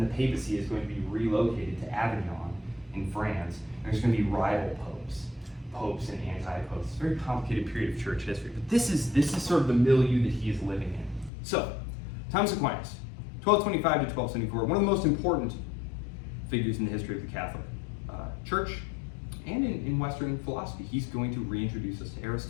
the papacy is going to be relocated to Avignon in France, and there's going to be rival popes and anti-popes. It's a very complicated period of church history, but this is sort of the milieu that he is living in. So, Thomas Aquinas, 1225 to 1274, one of the most important figures in the history of the Catholic Church and in Western philosophy. He's going to reintroduce us to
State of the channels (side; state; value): right; drops out; at 11.3 s